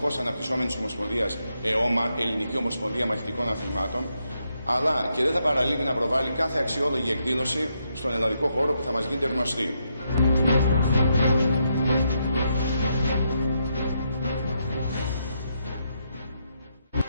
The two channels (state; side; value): inverted; both; correlation -0.80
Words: αναπτυσσόμενης ομοσπονδίας ΕΟΜΑ, Ελληνική Ομοσπονδία Μαχητικών Αθλημάτων, αλλά και δεν θα παραλείπει να προβάλλει κάθε αξιόλογη εκδήλωση στον ελλαδικό χώρο που θα μας γίνεται γνωστή.